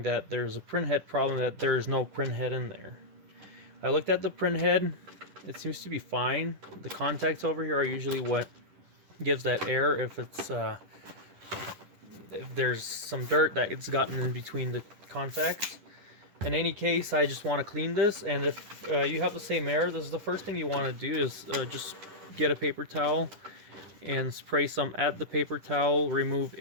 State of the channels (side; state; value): left; late; 10 ms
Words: that there's a printhead problem, that there's no printhead in there. I looked at the printhead. It seems to be fine. The contacts over here are usually what gives that error if it's if there's some dirt that it's gotten in between the contacts. In any case, I just want to clean this, and if you have the same error, this is the first thing you want to do is just get a paper towel and spray some at the paper towel. Remove